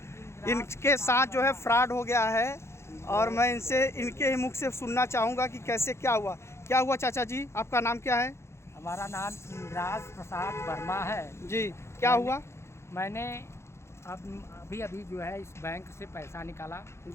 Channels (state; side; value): late; right; 0.13 ms